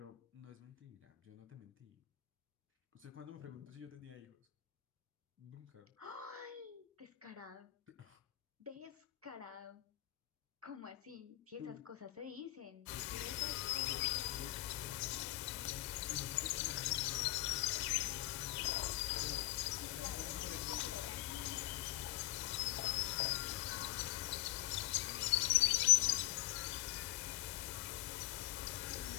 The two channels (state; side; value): quieter; right; 17.0 dB